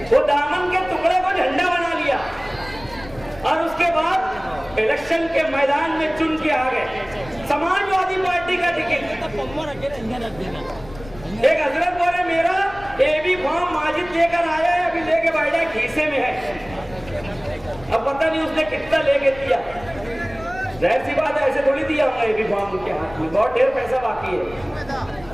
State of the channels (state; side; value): noise; left; rumble, 18 dB below the sound